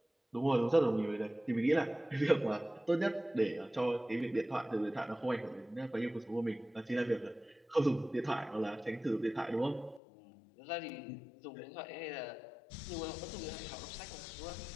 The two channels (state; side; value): drops out; right; at 10.0 s